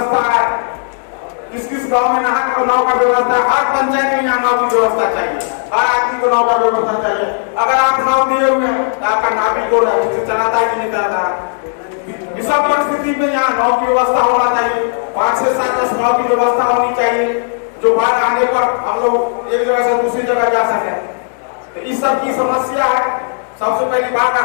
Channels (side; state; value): right; silent; digital silence